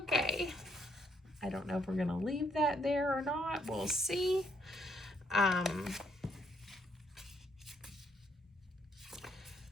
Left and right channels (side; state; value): both; normal; correlation 0.71